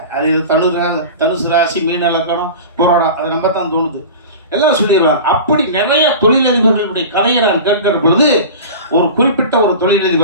அது தனுசு ராசி, மீன லக்கணம், போராடம், அதை நம்ப தான் தோணுது, எல்லாம் சொல்லிடுறாங்க. அப்படி நிறைய தொழிலதிபர்களுடைய கதையை நான் கேட்கிற பொழுது, ஒரு குறிப்பிட்ட ஒரு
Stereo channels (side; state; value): both; inverted; correlation -0.33